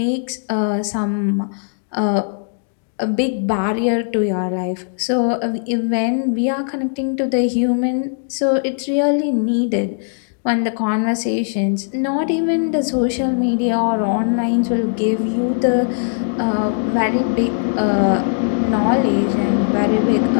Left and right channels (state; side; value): silent; right; digital silence